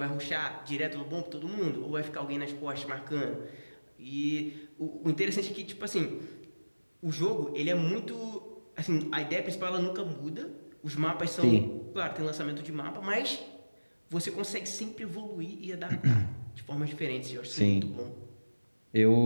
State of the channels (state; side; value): inverted; both; correlation -1.00